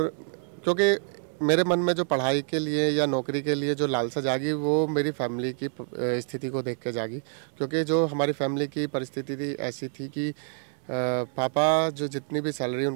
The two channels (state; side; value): silent; left; 60 dB below the other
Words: क्योंकि मेरे मन में जो पढ़ाई के लिए या नौकरी के लिए जो लालसा जागी वो मेरी फैमिली की स्थिति को देख के जागी। क्योंकि जो हमारी फैमिली की परिस्थिति थी ऐसी थी कि पापा जो जितनी भी सैलरी